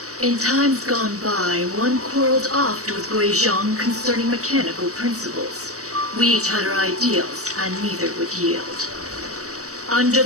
In times gone by, one quarreled oft with Gui Zhang concerning mechanical principles. We each had our ideals, and neither would yield. Under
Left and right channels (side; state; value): left; late; 0.65 ms